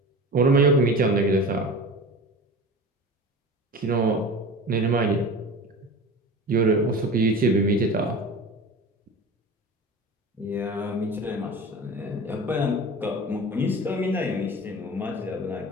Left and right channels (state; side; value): normal; both; correlation 0.34